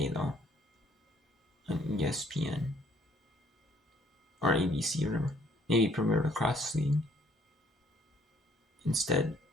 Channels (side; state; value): both; normal; correlation 0.63